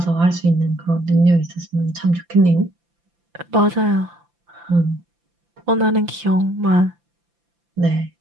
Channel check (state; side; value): late; left; 5.8 ms